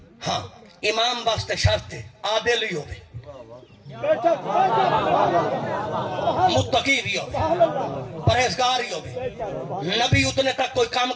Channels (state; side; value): identical; both; correlation 1.00